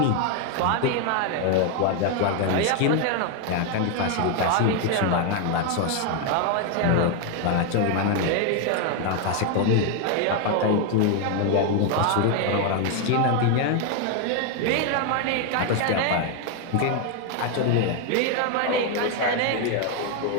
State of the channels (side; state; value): both; different; correlation 0.01